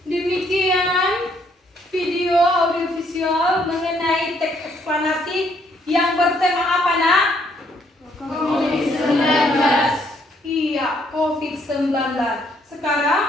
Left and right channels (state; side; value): normal; both; correlation 0.69